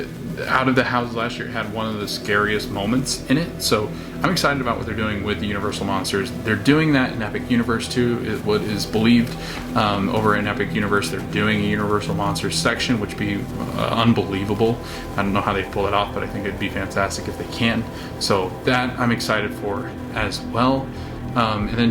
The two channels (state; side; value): identical; both; correlation 1.00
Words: out of the houses last year, it had one of the scariest moments in it. So I'm excited about what they're doing with the Universal Monsters. They're doing that in Epic Universe too, is what is believed. Over in Epic Universe, they're doing a Universal Monsters section, which would be unbelievable. I don't know how they pull it off, but I think it'd be fantastic if they can. So that I'm excited for as well. And then